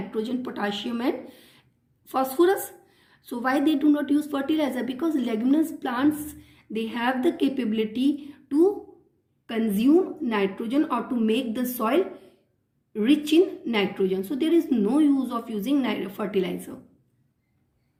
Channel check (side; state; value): both; identical; correlation 1.00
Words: potassium and phosphorus. So why they do not use fertilizer? Because leguminous plants, they have the capability to consume nitrogen or to make the soil rich in nitrogen. So there is no use of using fertilizer.